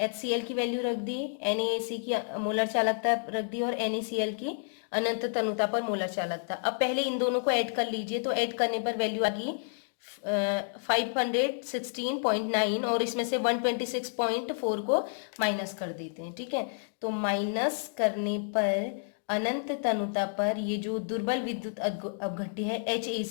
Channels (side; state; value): right; silent; digital silence